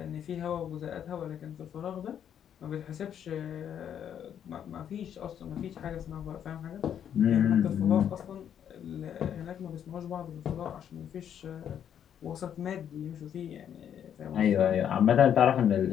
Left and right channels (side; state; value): right; quieter; 9.2 dB